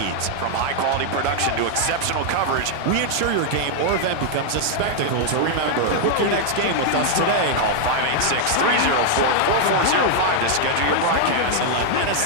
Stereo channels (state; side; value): different; both; correlation 0.00